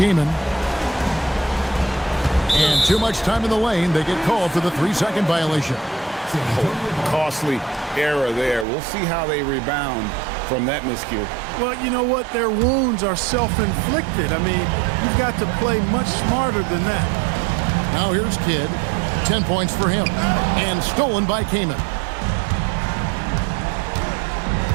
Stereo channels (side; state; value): left; drops out; at 8.7 s